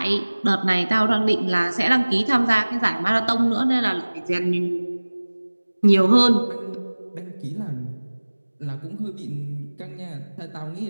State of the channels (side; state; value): both; inverted; correlation -1.00